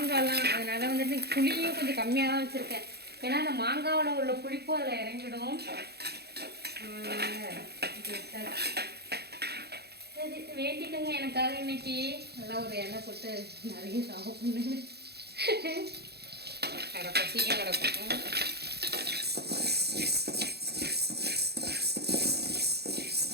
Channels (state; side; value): late; left; 0.47 ms